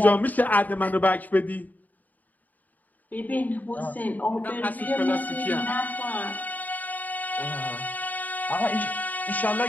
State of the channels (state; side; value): late; right; 0.081 ms